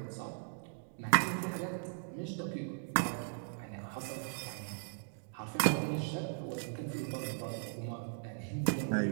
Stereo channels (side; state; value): left; silent; digital silence